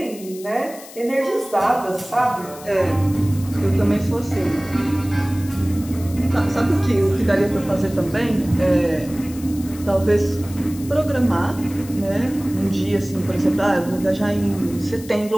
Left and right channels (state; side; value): noise; left; hiss, 18 dB below the sound